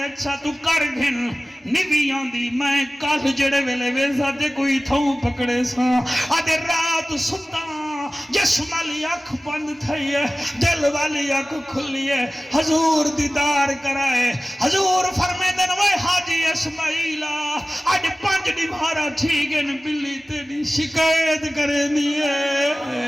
تو کر گھن نویاں دی، میں کال جڑے ویلے ویسا دے کوئی تھوں پکڑے سا، آدھے رات ستا جسم والی اکھ بند تھئی ہے، دل والی اکھ کھلی ہے، حضور دیدار کرائے، حضور فرمے دن وہ حاجی اسماعیلہ آج 5 نمہارا ٹھیکن بلی تیری شکایت کرے دیئے،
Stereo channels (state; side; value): normal; both; correlation 0.96